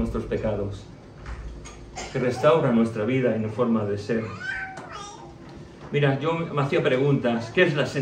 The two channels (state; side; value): identical; both; correlation 1.00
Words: pecados, que restaura nuestra vida y nuestra forma de ser. Mira, yo me hacía preguntas. ¿Qué es la